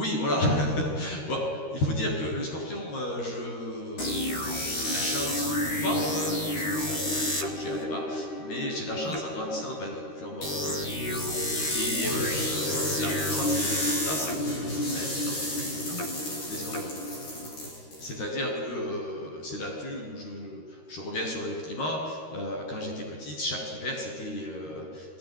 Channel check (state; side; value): late; right; 13 ms